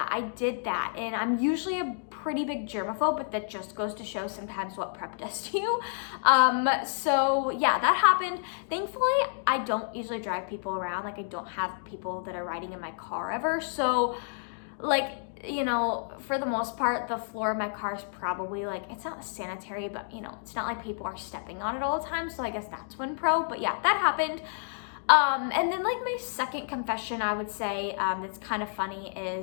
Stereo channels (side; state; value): right; silent; digital silence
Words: I did that. And I'm usually a pretty big germaphobe, but that just goes to show sometimes what prep does to you. So yeah, that happened. Thankfully, I don't usually drive people around. Like I don't have people that are riding in my car ever. So like, you know, for the most part, the floor of my car is probably like, it's not sanitary, but you know, it's not like people are stepping on it all the time. So I guess that's one pro, but yeah, that happened. And then like my second confession, I would say, that's kind of funny